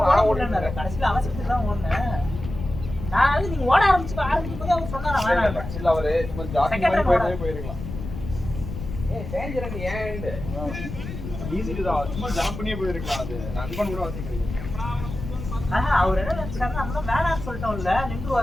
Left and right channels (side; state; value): left; noise; rumble, 8 dB below the sound